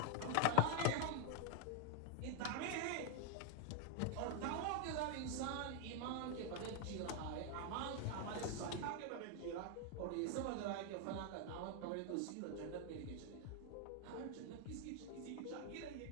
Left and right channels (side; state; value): both; different; correlation 0.01